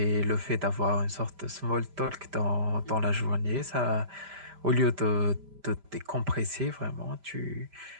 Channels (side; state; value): left; late; 5.1 ms